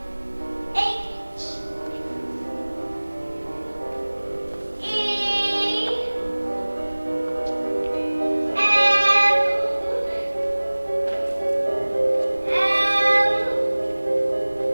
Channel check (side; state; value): both; inverted; correlation -1.00